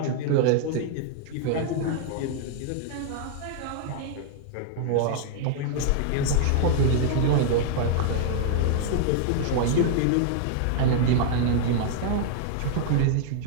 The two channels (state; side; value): different; both; correlation -0.01